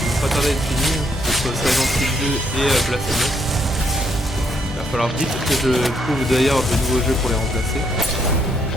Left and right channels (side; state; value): both; normal; correlation 0.73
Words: vont pas tarder à être finis, hein, que ce soit Silent Hill 2 et Blasphemous. Il va falloir vite que je trouve d'ailleurs de nouveaux jeux pour les remplacer.